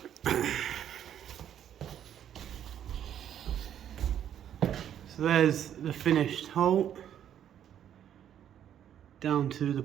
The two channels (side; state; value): left; quieter; 10.0 dB